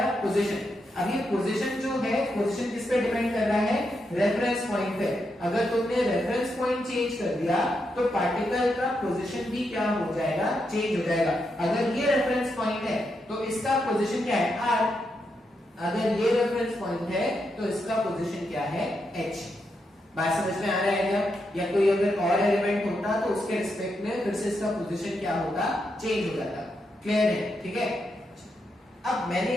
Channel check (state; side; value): normal; both; correlation 0.83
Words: पोजीशन। अब ये पोजीशन जो है, पोजीशन किस पे डिपेंड कर रहा है, रेफरेंस पॉइंट पे। अगर तुमने रेफरेंस पॉइंट चेंज कर दिया तो पार्टिकल का पोजीशन भी क्या हो जाएगा, चेंज हो जाएगा। अगर ये रेफरेंस पॉइंट है तो इसका पोजीशन क्या है, r, अगर ये रेफरेंस पॉइंट है तो इसका पोजीशन क्या है, h। बात समझ में आ रहा है क्या? या कोई अगर और एलिमेंट होता तो उसके रिस्पेक्ट में फिर से इसका पोजीशन क्या होता, चेंज हो जाता। क्लियर है? ठीक है। अब मैंने